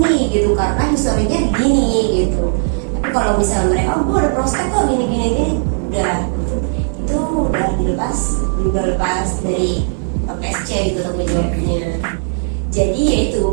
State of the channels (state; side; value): silent; left; 59 dB below the other